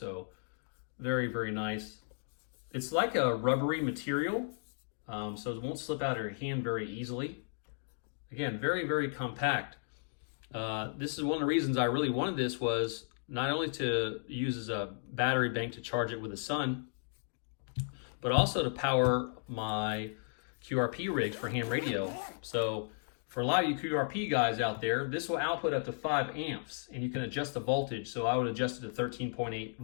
very, very nice. It's like a rubbery material, so it won't slip out of your hand very easily. Again, very, very compact. This is one of the reasons I really wanted this, was not only to use as a battery bank to charge it with the sun, but also to power my QRP rig for ham radio. So for a lot of you QRP guys out there, this will output up to 5 amps, and you can adjust the voltage. So I would adjust it to 13.8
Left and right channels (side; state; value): right; silent; digital silence